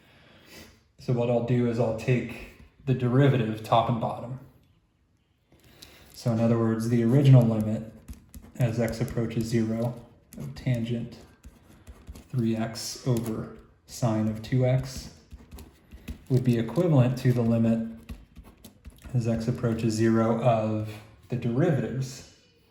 So what I'll do is I'll take the derivative top and bottom. So in other words, the original limit as x approaches 0 of tangent 3x over sine of 2x would be equivalent to the limit as x approaches 0 of the derivatives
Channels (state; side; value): identical; both; correlation 1.00